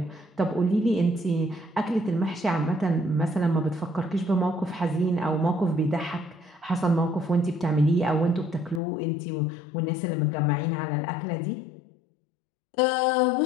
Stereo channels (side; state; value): right; drops out; at 8.8 s